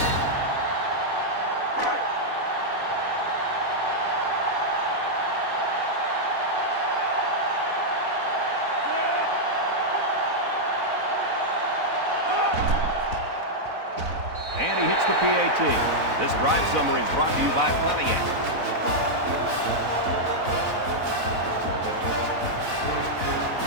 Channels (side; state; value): left; late; 4.0 ms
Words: And he hits the PAT. This drive summary is brought to you by Pontiac.